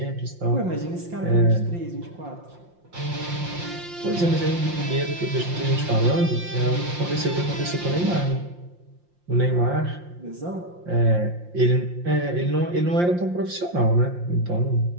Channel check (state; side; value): late; left; 5.7 ms